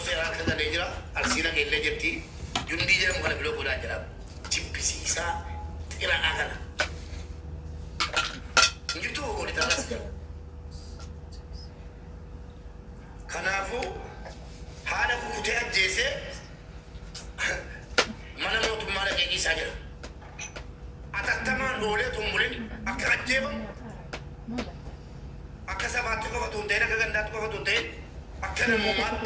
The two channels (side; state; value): both; identical; correlation 1.00